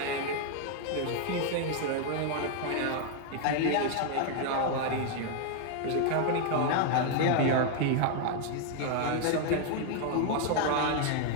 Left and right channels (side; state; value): both; different; correlation 0.00